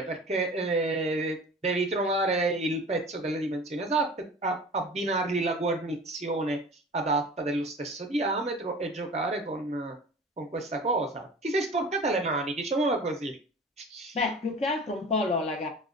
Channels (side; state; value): both; normal; correlation 0.40